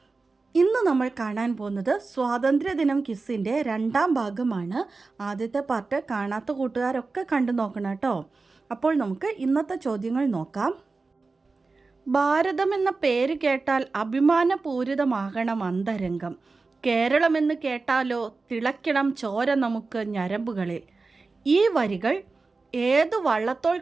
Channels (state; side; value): quieter; left; 3.9 dB